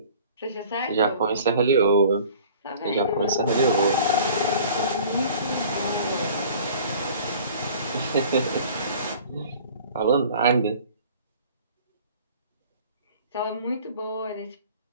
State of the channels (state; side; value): inverted; both; correlation -0.47